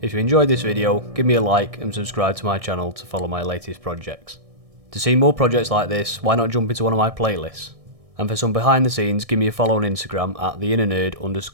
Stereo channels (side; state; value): left; late; 1.6 ms